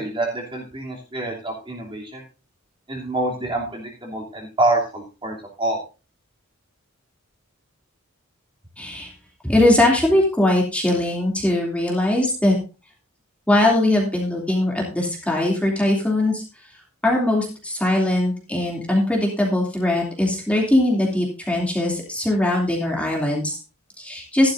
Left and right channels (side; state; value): both; normal; correlation 0.69